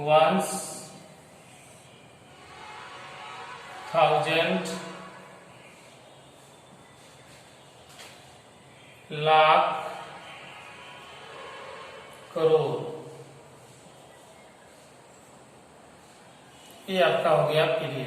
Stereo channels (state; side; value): identical; both; correlation 1.00